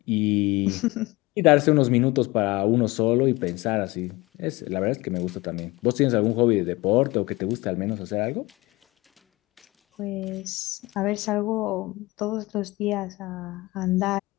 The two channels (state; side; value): quieter; right; 21.9 dB